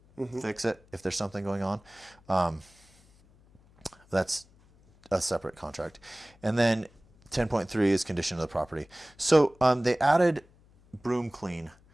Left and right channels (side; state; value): left; noise; hum, 29 dB below the sound